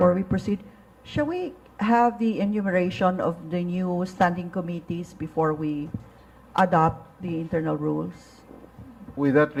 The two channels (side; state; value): both; identical; correlation 1.00